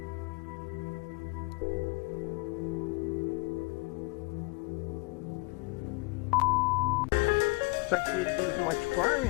Looks like he didn't do much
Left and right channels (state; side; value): quieter; right; 26.3 dB